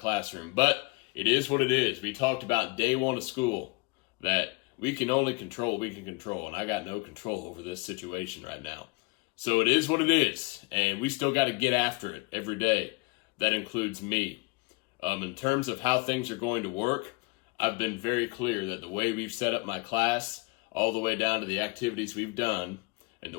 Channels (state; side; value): quieter; right; 26.0 dB